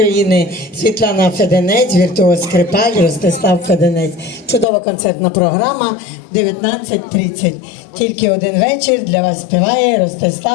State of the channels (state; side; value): drops out; right; at 4.7 s